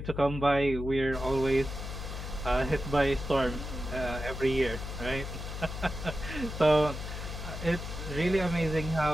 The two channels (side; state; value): left; noise; hum, 7 dB below the sound